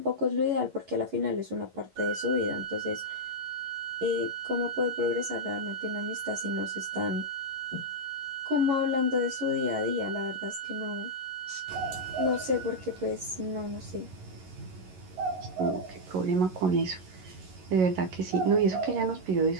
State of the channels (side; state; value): left; late; 11 ms